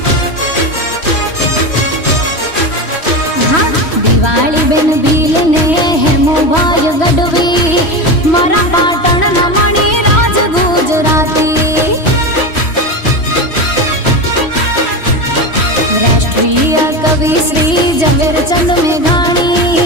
दिवाली बेन भील ने हेमो भाई गढ़वी मारा पाटण ना मणि राज गुजराती राष्ट्रीय कवि श्री झवेरचंद मेघाणी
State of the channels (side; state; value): right; late; 3.1 ms